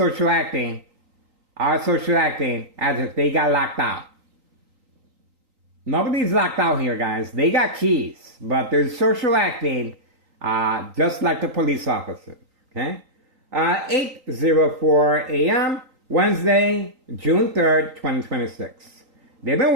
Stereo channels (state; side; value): late; left; 3.9 ms